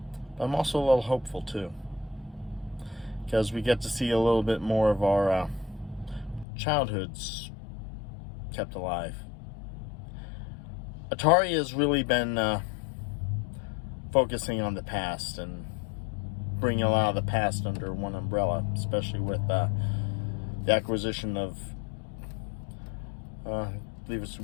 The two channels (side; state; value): right; drops out; at 6.5 s